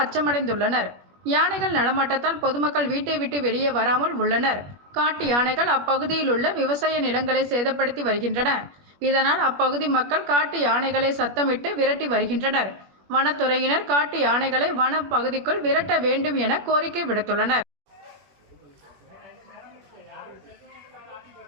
அச்சமடைந்துள்ளனர். யானைகள் நடமாட்டத்தால் பொதுமக்கள் வீட்டை விட்டு வெளியே வராமல் உள்ளனர். காட்டு யானைகள் அப்பகுதியில் உள்ள விவசாய நிலங்களை சேதப்படுத்தி வருகின்றன. இதனால் அப்பகுதி மக்கள் காட்டு யானைகளை சத்தமிட்டு விரட்டி வருகின்றனர். வனத்துறையினர் காட்டு யானைகளை வன பகுதிக்குள் விரட்ட வேண்டும் என கோரிக்கை விடுத்துள்ளனர்.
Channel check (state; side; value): late; left; 21 ms